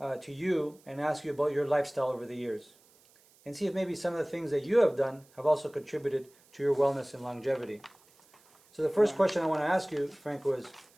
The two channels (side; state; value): right; noise; hiss, 30 dB below the sound